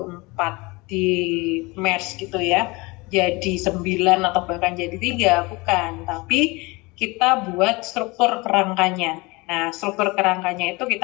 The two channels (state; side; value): quieter; right; 24.5 dB